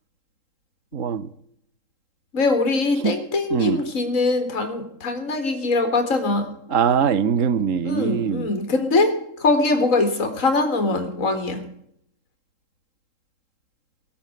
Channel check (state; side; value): late; right; 3.8 ms